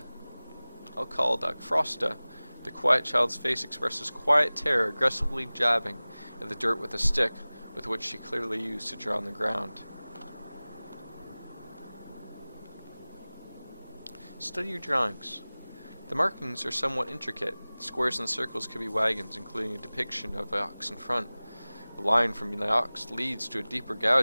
I'll call Doc Frosta. The quiet child's face expresses quiet terror, aggressively jabbing at the dirt with a stick with which she clearly used to draw on the ground. Study your drawings. The markings are somewhat intricate. Squares and circles could be wagons, including a depiction of an ox in front. The line from the ox leads to a deeper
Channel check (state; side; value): inverted; both; correlation -0.99